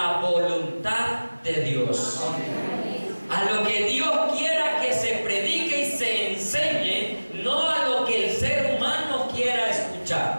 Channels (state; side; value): inverted; both; correlation -1.00